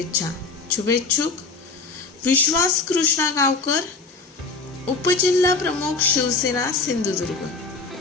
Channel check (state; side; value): quieter; right; 4.1 dB